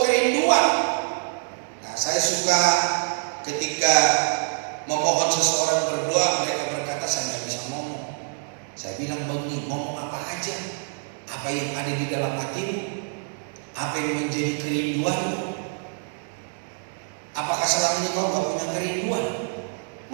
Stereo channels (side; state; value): left; silent; digital silence